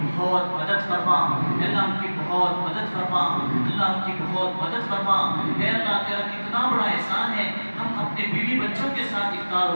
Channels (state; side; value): inverted; both; correlation -1.00